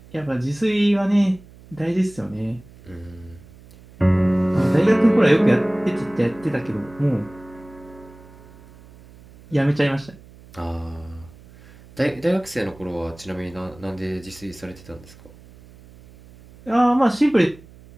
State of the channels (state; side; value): noise; right; hum, 22 dB below the sound